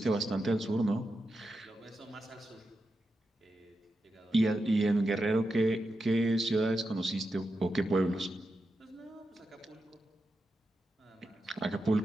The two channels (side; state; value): both; normal; correlation 0.88